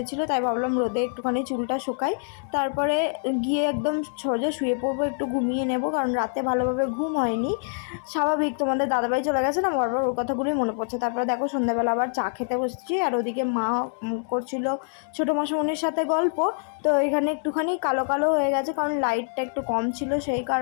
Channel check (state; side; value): silent; right; 61 dB below the other